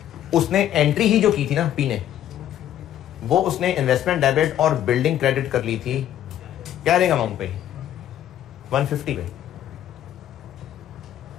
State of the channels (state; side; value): quieter; right; 11.3 dB